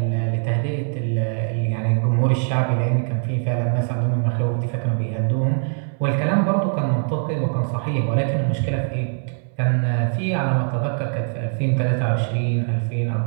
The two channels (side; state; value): left; silent; 64 dB below the other